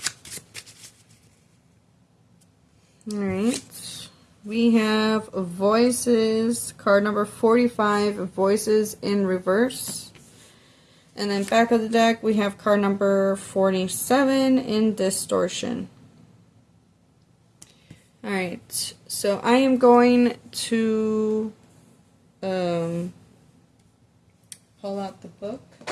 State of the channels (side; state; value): both; identical; correlation 1.00